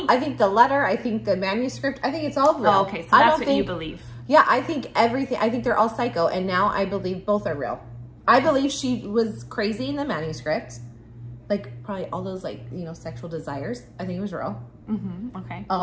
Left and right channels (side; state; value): both; identical; correlation 1.00